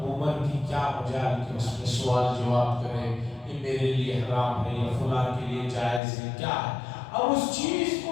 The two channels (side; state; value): right; drops out; at 6.0 s